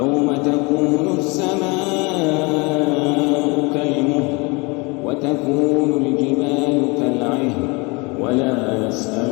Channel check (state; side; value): quieter; right; 27.8 dB